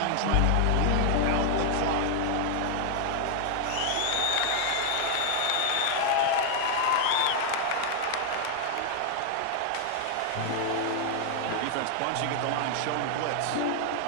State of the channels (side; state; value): both; different; correlation 0.00